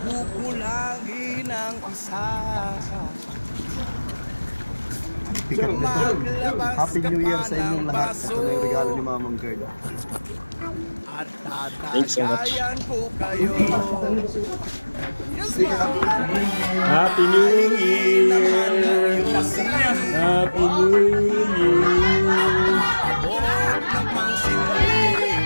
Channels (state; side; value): inverted; both; correlation -1.00